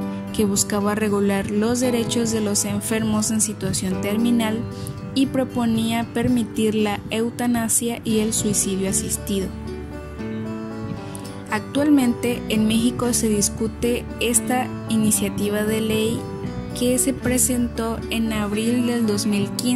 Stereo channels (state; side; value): identical; both; correlation 1.00